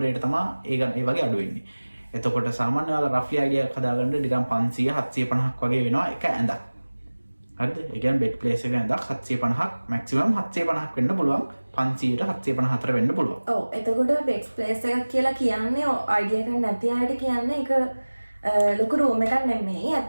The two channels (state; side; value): inverted; both; correlation -1.00